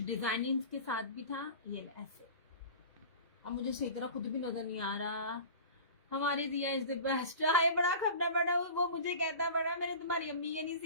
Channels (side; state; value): both; inverted; correlation -0.36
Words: डिजाइनिंग के साथ भी था। ये ऐसे, अब मुझे सही तरह खुद भी नजर नहीं आ रहा। हमारे दिया इज द बेस्ट। हाय बड़ा खपना बड़ा, वो मुझे कहता बड़ा मेरे तुम्हारी अम्मी के नहीं